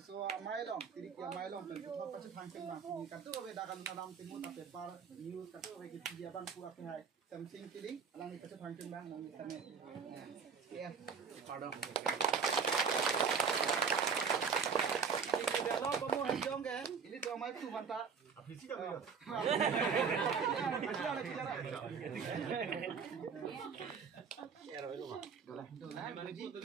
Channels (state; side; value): quieter; left; 6.0 dB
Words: mailong, tirik ya mailong, dan tuh pasti fungsi bang, ini katu beda kan dalam timur tapi par news katu bagi dia bang pura pihak something pilih, alang itu pasti fungsi bang, mau misalnya, ya, pardon. Kalau kamu hijau kan, ini tuh mai tu mantap. Apisi dah boleh.